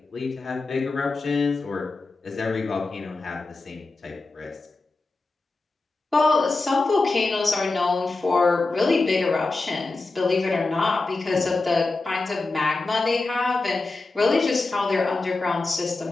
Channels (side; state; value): right; quieter; 3.5 dB